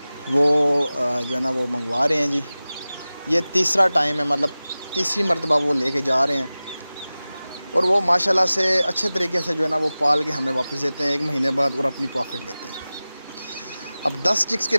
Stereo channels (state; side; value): inverted; both; correlation -0.97